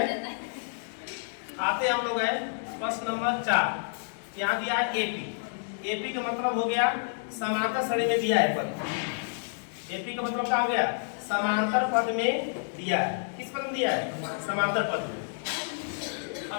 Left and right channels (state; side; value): silent; right; digital silence